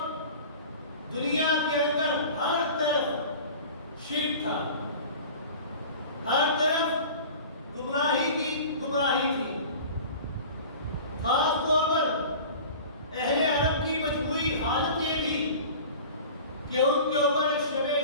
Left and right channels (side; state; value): both; inverted; correlation -0.40